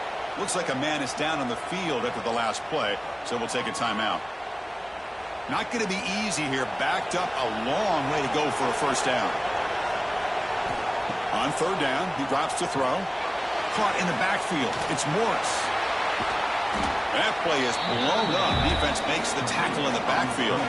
Looks like a man is down on the field after the last play, so we'll take a timeout. Not going to be easy here. Backed up a long way to go for a first down. On third down, he drops to throw. Caught in the backfield. It's Morris. That play is blown up. Defense makes the tackle in the backfield.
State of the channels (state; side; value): identical; both; correlation 1.00